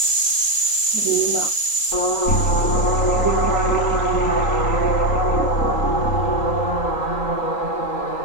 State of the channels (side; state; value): right; late; 3.8 ms